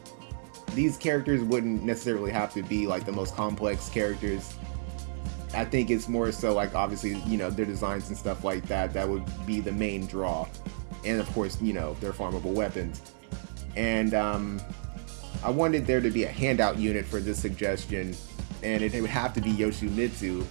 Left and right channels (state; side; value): silent; left; digital silence